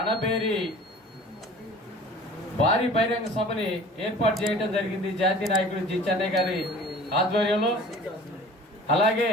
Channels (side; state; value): both; normal; correlation 0.45